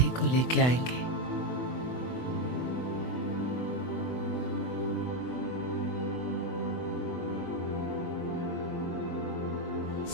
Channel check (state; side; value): late; right; 24 ms